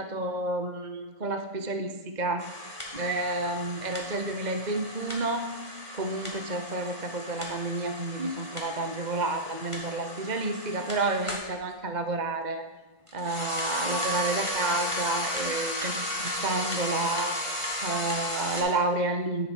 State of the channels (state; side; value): late; left; 1.5 ms